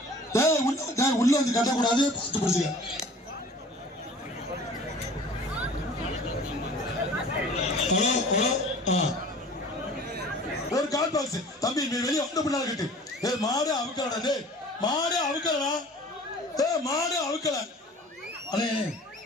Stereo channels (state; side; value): normal; both; correlation 0.45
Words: உள்ள வந்து கட்டக்கூடாது. பார்த்து பிடிச்சிக்க. ஒரு கால் பாக்ஸ் தம்பி வெளியே வந்து பின்னால கட்டு. மாடு அவுக்கலடா. மாடு அவுக்கலடா. மாடு அவுக்கல.